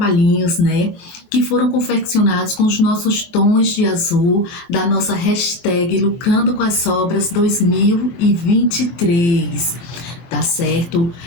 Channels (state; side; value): late; right; 24 ms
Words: né, que foram confeccionados com os nossos tons de azul da nossa hashtag Lucrando com as Sobras 2023. Tá certo?